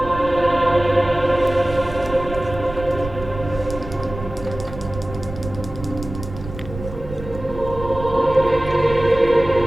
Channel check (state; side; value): noise; right; rumble, 11 dB below the sound